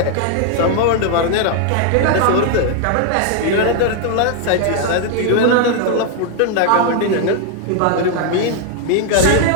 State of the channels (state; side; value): different; both; correlation 0.00